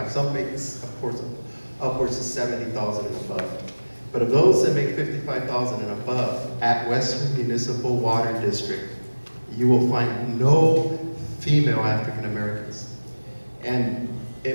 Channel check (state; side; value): inverted; both; correlation -1.00